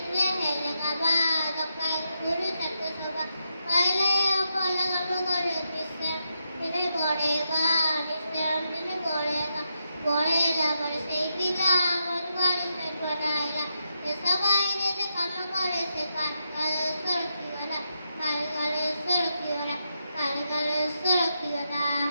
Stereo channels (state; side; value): inverted; both; correlation -0.84